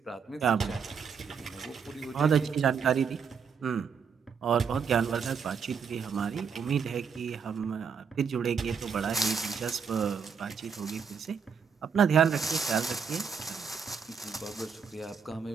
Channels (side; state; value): left; quieter; 6.4 dB